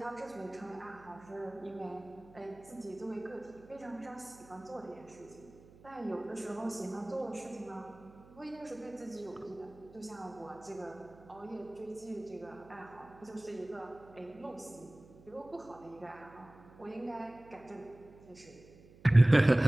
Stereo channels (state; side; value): noise; right; hum, 22 dB below the sound